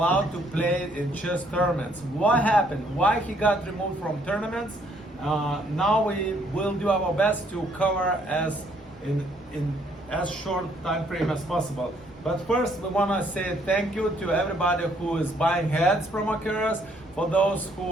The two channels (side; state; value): both; normal; correlation 0.67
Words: to play in chess tournaments. What happened? Why he got removed from tournaments? Now we will do our best to cover as in as short time frame as possible. But first, we want to say thank you to everybody who is buying heads from Accusations, for those